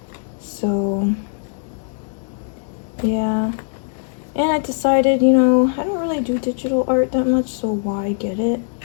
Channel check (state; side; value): silent; right; 57 dB below the other